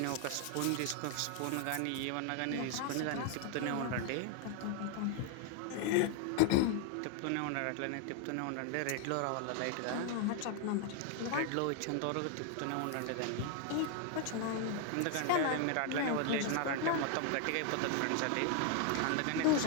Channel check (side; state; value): both; different; correlation 0.00